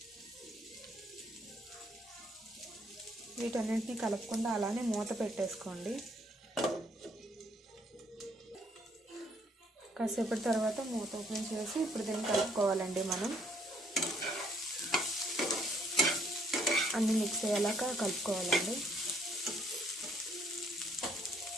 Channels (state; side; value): normal; both; correlation 0.67